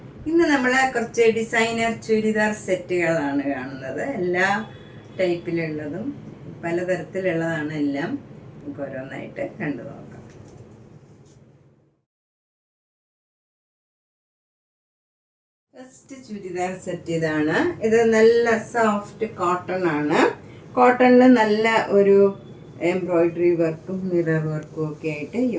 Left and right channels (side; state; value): both; identical; correlation 1.00